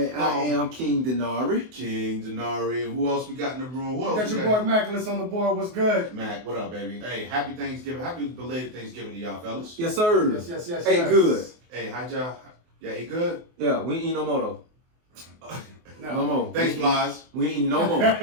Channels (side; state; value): left; late; 24 ms